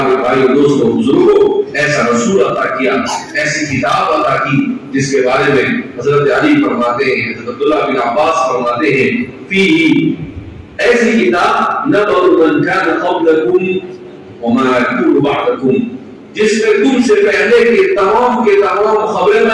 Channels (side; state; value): both; identical; correlation 1.00